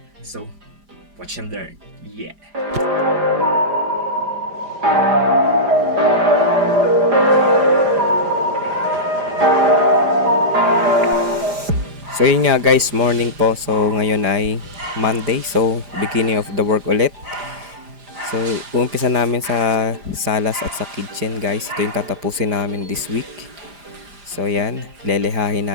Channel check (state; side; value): late; left; 4.9 ms